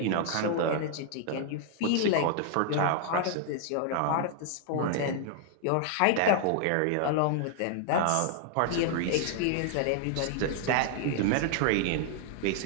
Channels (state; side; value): different; both; correlation 0.00